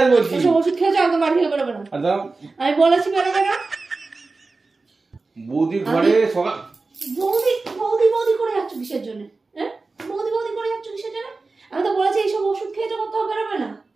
বলছি। ওসব ওষুধ খেয়েছো একদম বাড়ি থেকে বেরোবে না। আর দাঁড়াও, আমি বলেছি বেরোবে না। বৌদি ঘরে সকাল বৌদি বৌদি বৌদি করে যাচ্ছ কিসের জন্য? হ্যাঁ, বৌদি বৌদি করে যাচ্ছ কিসের জন্য? আমি তো বলেছি এইসব ওষুধ খেয়েছো, কোথাও বেরোবে না।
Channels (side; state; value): left; quieter; 3.7 dB